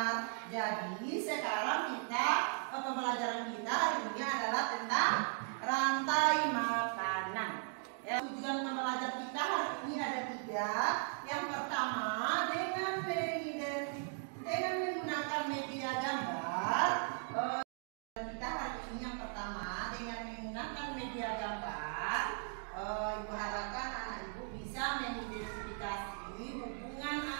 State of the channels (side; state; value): left; silent; 53 dB below the other